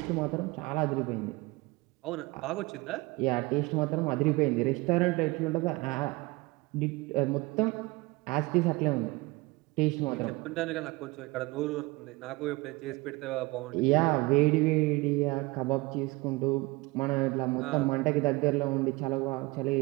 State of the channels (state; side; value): quieter; left; 23.2 dB